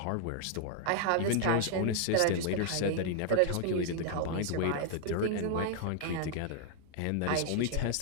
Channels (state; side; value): different; both; correlation -0.01